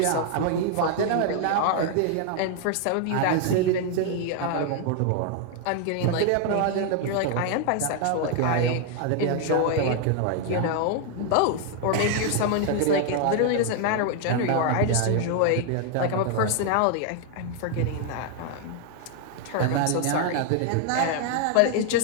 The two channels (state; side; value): different; both; correlation 0.00